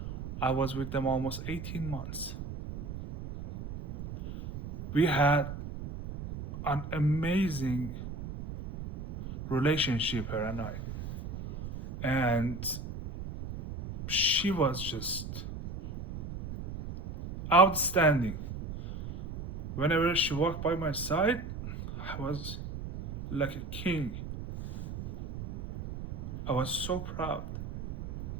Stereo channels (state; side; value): noise; right; rumble, 9 dB below the sound